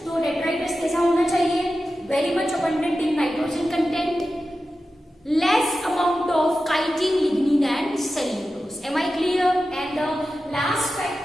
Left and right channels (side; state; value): both; normal; correlation 0.93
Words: तो detritus कैसा होना चाहिए? Very much abundant in nitrogen content, less amount of chitin, lignin and cellulose. Am I clear? And the last